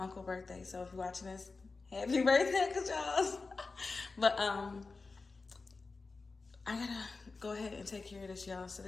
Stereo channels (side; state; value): right; quieter; 4.0 dB